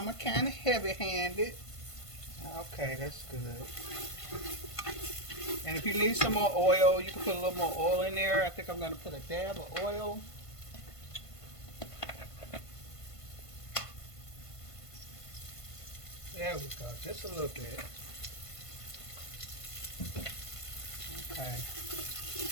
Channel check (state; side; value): late; right; 1.5 ms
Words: kind of heavy-handed. Okay, that's good. And if you need some more oil, you can put a little more oil in there. I think I'm going to put a dab of oil. There we go, just a little bit. Okay.